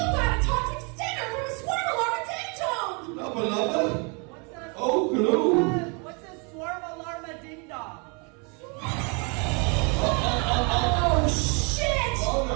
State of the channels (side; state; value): left; quieter; 33.7 dB